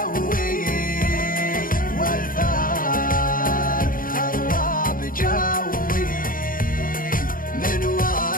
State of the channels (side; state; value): right; late; 0.40 ms